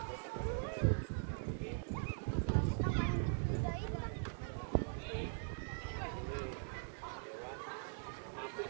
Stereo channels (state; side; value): silent; left; digital silence